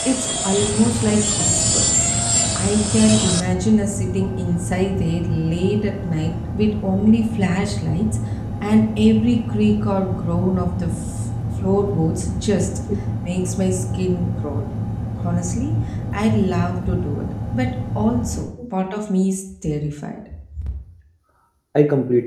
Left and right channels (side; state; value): both; identical; correlation 1.00